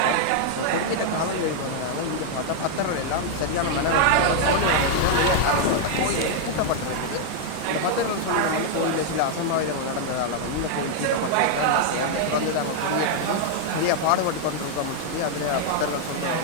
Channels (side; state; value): both; different; correlation 0.00